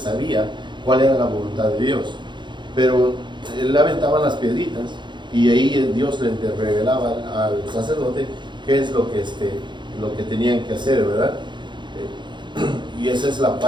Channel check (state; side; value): late; left; 0.23 ms